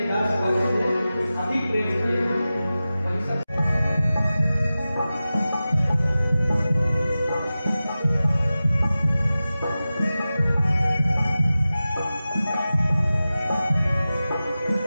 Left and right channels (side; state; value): both; inverted; correlation -0.95